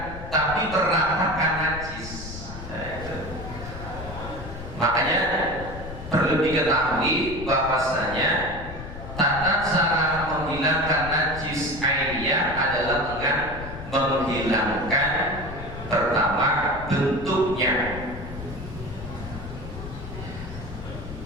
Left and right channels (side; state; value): left; noise; rumble, 11 dB below the sound